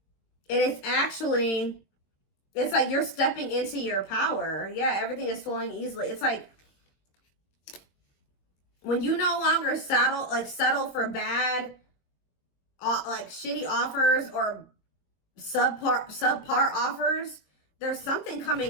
And it's actually, it's like you're stepping into your power. Yeah, everything is flowing easily. It's like, when you no longer settle for bad, like shitty offers or subpar offers, there's something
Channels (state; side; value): late; right; 22 ms